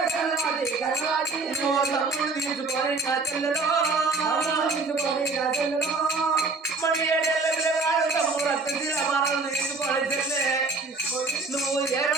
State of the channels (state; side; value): quieter; left; 3.8 dB